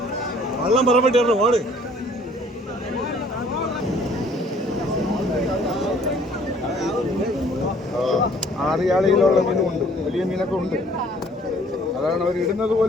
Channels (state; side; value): normal; both; correlation 0.57